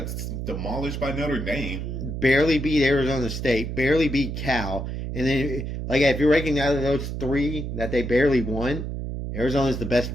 demolished by Notre Dame. Barely beat Arizona State. Barely beat Cal. And then, like, if you're ranking out of those three that they barely won, Arizona's the best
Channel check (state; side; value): noise; right; hum, 5 dB below the sound